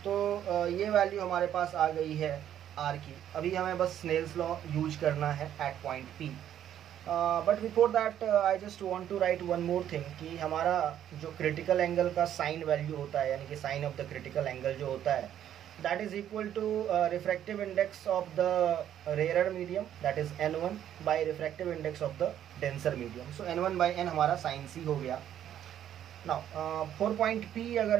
तो ये value हमारे पास आ गई है R की। अभी हमें बस स्नेल्स लॉ यूज करना है at point P। But before that I just want to write one more thing कि हमारा जो क्रिटिकल एंगल का साइन वैल्यू होता है, यानी कि sine of the critical angle जो होता है, that is equal to refractive index of the rarer medium, that is N1 by refractive index of the denser medium. So N1 by N हमारा sine C हो गया। Now 4 point P अगर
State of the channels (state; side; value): quieter; left; 10.6 dB